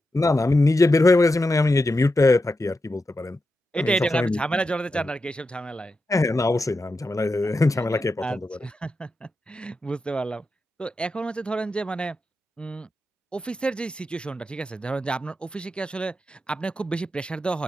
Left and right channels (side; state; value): both; normal; correlation 0.88